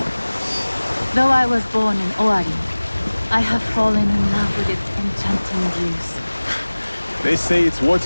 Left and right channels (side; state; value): both; inverted; correlation -1.00